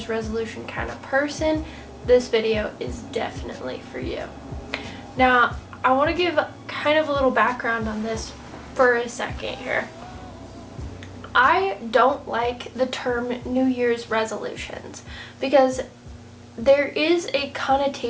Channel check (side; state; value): both; identical; correlation 1.00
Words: resolution kind of person, this video is definitely for you. Now, I want to give kind of a little background on this for a second here. I don't like the term New Year's resolutions because there is a